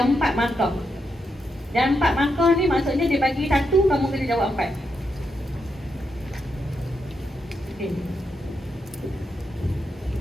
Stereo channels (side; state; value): both; normal; correlation 0.83